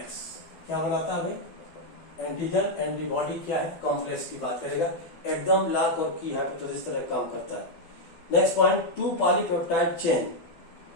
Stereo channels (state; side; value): late; right; 12 ms